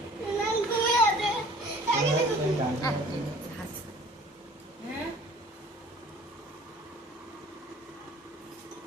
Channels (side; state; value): both; normal; correlation 0.49